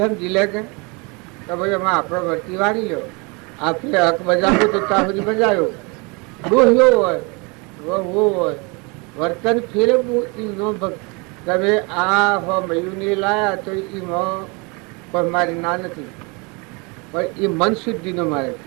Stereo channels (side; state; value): left; quieter; 29.7 dB